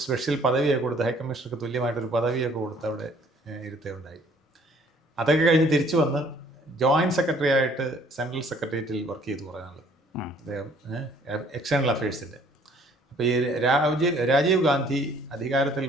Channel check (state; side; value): normal; both; correlation 0.59